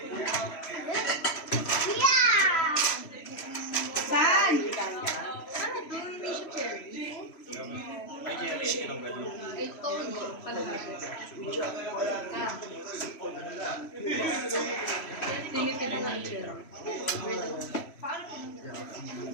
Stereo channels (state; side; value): late; right; 3.0 ms